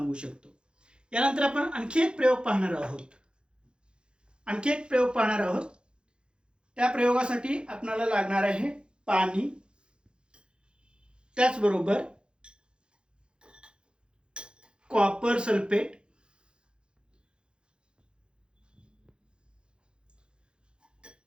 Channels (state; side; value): late; left; 0.052 ms